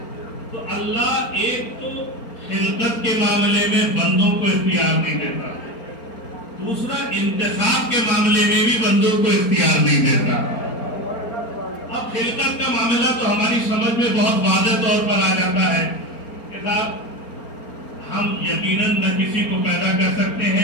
تو اللہ ایک تو خلقت کے معاملے میں بندوں کو اختیار نہیں دیتا، دوسرا انتخاب کے معاملے میں بھی بندوں کو اختیار نہیں دیتا. اب خلقت کا معاملہ تو ہماری سمجھ میں بہت واضح طور پر آ جاتا ہے کہ صاحب ہم یقیناً نہ کسی کو پیدا کر سکتے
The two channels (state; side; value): late; right; 4.4 ms